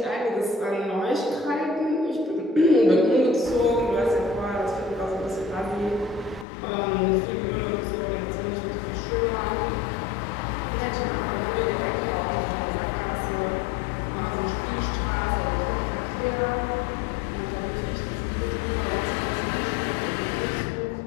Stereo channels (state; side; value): drops out; right; at 6.5 s